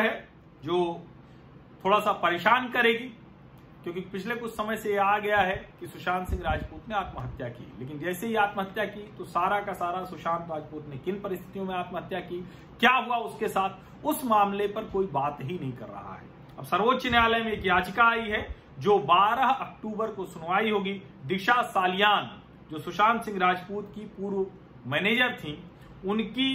है जो थोड़ा सा परेशान करेगी, क्योंकि पिछले कुछ समय से आ गया है कि सुशांत सिंह राजपूत ने आत्महत्या की। लेकिन जैसे ही आत्महत्या की तो सारा का सारा सुशांत राजपूत ने किन परिस्थितियों में आत्महत्या की, क्या हुआ उसके साथ, उस मामले पर कोई बात ही नहीं कर रहा है। अब सर्वोच्च न्यायालय में एक याचिका आई है जो 12 अक्टूबर को सुनवाई होगी। दिशा सालियान जो सुशांत सिंह राजपूत की पूर्व मैनेजर थी,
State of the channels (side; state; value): both; identical; correlation 1.00